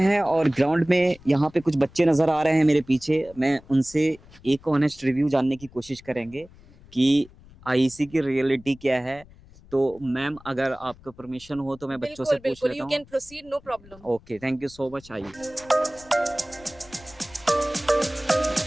और ग्राउंड में यहाँ पे कुछ बच्चे नज़र आ रहे हैं मेरे पीछे, मैं उनसे एक ऑनेस्ट रिव्यू जानने की कोशिश करेंगे कि आईसी की रियलिटी क्या है। तो मैम अगर आपका परमिशन हो तो मैं बच्चों से पूछ लेता यू हूँ। Can proceed, no problem. Okay, thank you so much. आइए।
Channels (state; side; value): noise; left; rumble, 23 dB below the sound